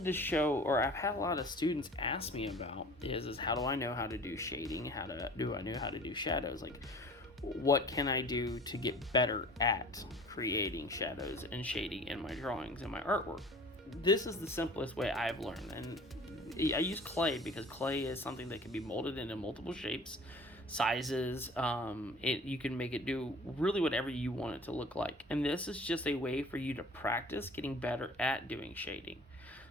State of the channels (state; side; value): normal; both; correlation 0.45